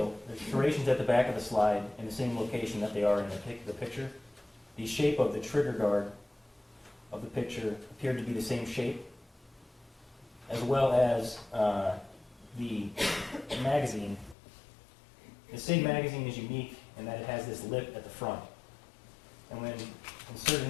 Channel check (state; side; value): drops out; right; at 14.4 s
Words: there's serrations at the back of the slide in the same location that they are in the picture. The shape of the trigger guard of the picture appeared to be the same shape, as well as the magazine. The SIG magazine is unique in that it has this lip at the front. And when inserted